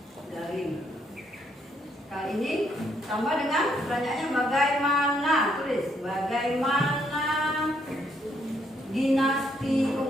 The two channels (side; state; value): both; normal; correlation 0.72